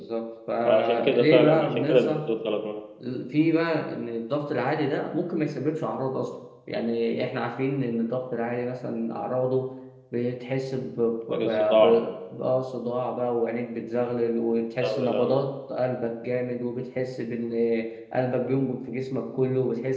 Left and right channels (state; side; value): identical; both; correlation 1.00